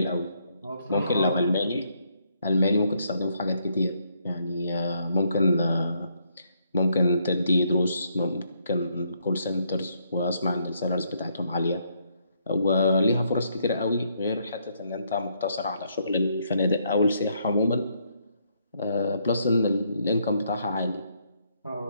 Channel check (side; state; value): both; inverted; correlation -0.73